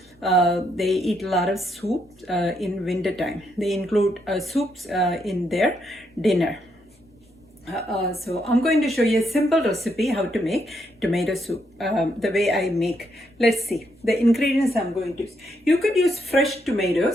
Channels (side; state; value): both; normal; correlation 0.77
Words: they eat a lot of soup in winter time. They include soups in their dinner. So I'm going to show you a simple recipe how to make tomato soup, the way I make. Let's see the ingredients I'm going to use. You could use fresh